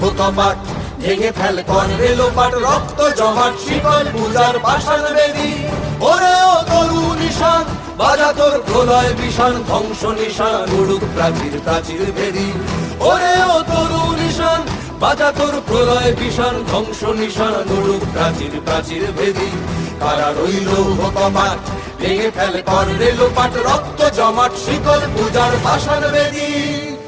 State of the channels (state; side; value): identical; both; correlation 1.00